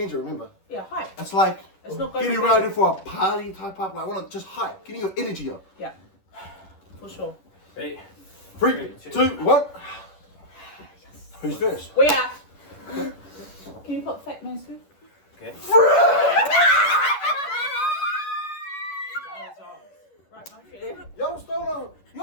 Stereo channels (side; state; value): right; late; 11 ms